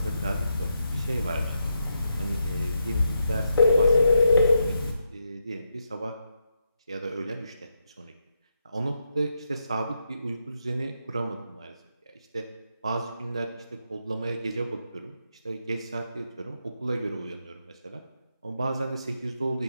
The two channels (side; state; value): both; inverted; correlation -0.82